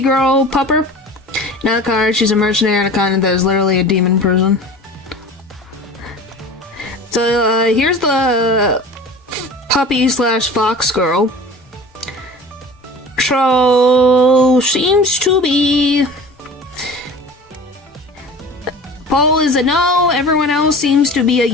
girl pupper? Not a card, she's a mercenary on a continent that is literally a demon prison. So here's the puppy slash fox girl. So seems to be... Paul is a no, everyone else seems to be a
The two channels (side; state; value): both; normal; correlation 0.39